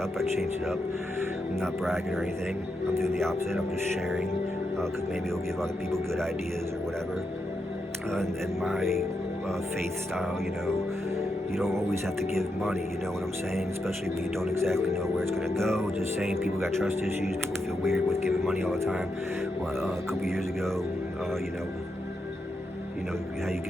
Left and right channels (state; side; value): normal; both; correlation 0.84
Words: I changed it up. I'm not bragging or anything. I'm doing the opposite. I'm just sharing, because maybe it'll give other people good ideas or whatever. And my faith style, you don't always have to give money, you know what I'm saying? Especially when you don't exactly know where it's going to go. Just saying, people got trust issues. People feel weird with giving money all the time. Well, a couple years ago, how you